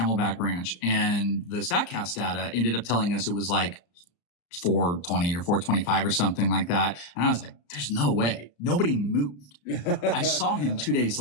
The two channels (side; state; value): right; late; 34 ms